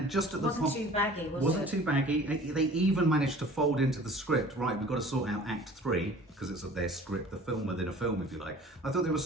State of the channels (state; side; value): normal; both; correlation 0.47